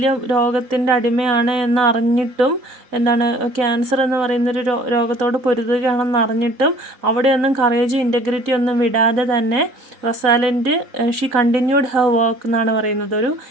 രോഗത്തിൻ്റെ അടിമയാണ് എന്ന് അറിഞ്ഞിട്ടും, ക്യാൻസർ എന്ന് പറയുന്നൊരു രോഗത്തോട് പൊരുതുകയാണെന്ന് അറിഞ്ഞിട്ടും അവിടെയൊന്നും കറേജും ഇൻറ്റഗ്രിറ്റി ഒന്നും വിടാതെ തന്നെ റൊസാലിൻഡ് ഷീ കണ്ടിന്യൂഡ് ഹെർ വർക്ക് എന്നാണ് പറയുന്നത്. ഒരു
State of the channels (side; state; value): left; late; 4.0 ms